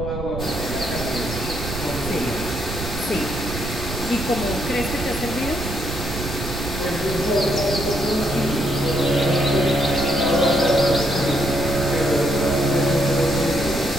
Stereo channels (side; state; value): right; noise; rumble, 7 dB below the sound